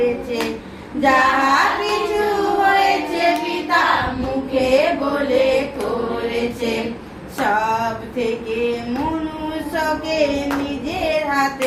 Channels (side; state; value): both; identical; correlation 1.00